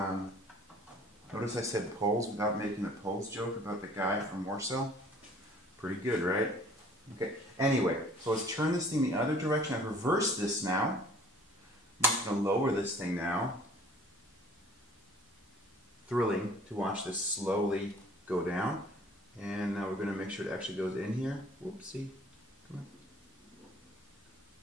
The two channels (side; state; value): both; normal; correlation 0.52